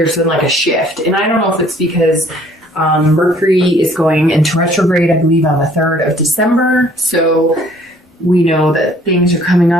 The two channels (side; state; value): both; normal; correlation 0.58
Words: been like a shift, and I don't know if it's because Mercury is going into retrograde, I believe, on the 3rd of December. So we know that things are coming